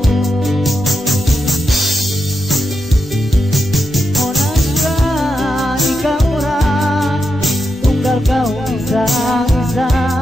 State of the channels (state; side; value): normal; both; correlation 0.86